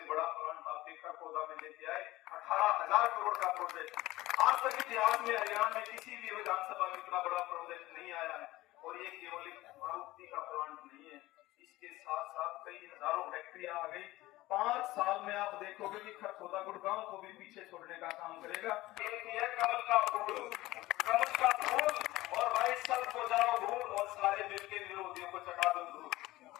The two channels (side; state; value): right; quieter; 17.9 dB